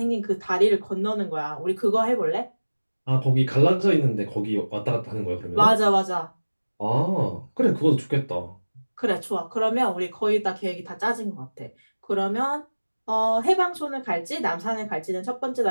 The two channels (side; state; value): both; inverted; correlation -1.00